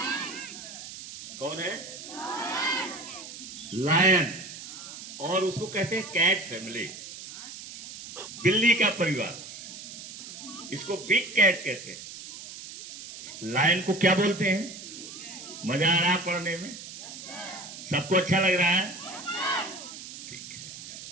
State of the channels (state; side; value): noise; right; hiss, 12 dB below the sound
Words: कौन है? लायन। और उसको कहते हैं कैट फैमिली, बिल्ली का परिवार। इसको बिग कैट कहते हैं। लायन को क्या बोलते हैं? मजा आ रहा है पढ़ने में? सबको अच्छा लग रहा है? ठीक है।